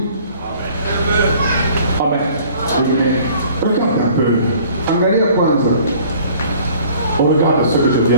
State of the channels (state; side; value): inverted; both; correlation -0.52